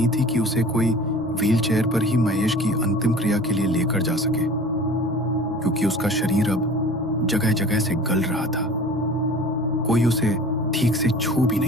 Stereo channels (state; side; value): noise; left; hum, 29 dB below the sound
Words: थी कि उसे कोई व्हीलचेयर पर ही महेश की अंतिम क्रिया के लिए लेकर जा सके, क्योंकि उसका शरीर अब जगह जगह से गल रहा था। कोई उसे ठीक से छू भी